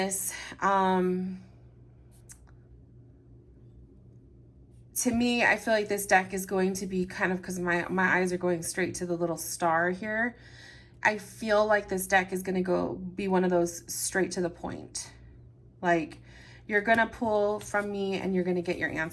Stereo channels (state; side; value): identical; both; correlation 1.00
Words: to me, I feel like this deck is going to be kind of, because my eyes are going straight to the little star here. I feel like this deck is going to be one of those straight to the point. Like, you're going to pull from me and you're going to get your